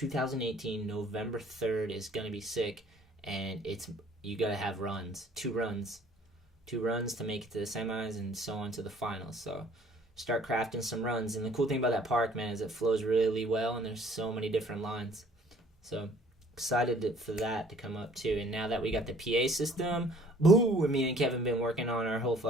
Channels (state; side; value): normal; both; correlation 0.56